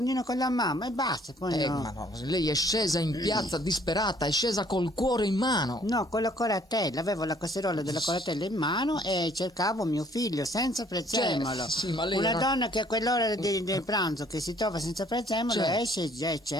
con la mamma e basta, poi no. Ma no, lei è scesa in piazza disperata, è scesa col cuore in mano. No, con la coratella, avevo la casseruola della coratella in mano e cercavo mio figlio senza prezzemolo. Sì, ma lei Una era- donna che a quell'ora del pranzo che si trova senza prezzemolo Certo. esce e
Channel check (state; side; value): normal; both; correlation 0.60